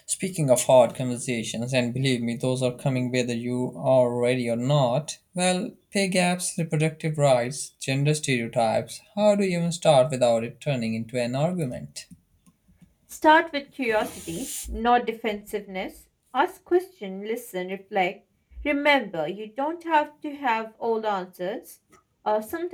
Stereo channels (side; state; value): both; identical; correlation 1.00